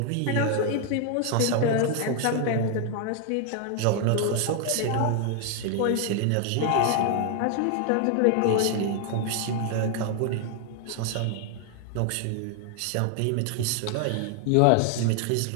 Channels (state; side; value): different; both; correlation 0.00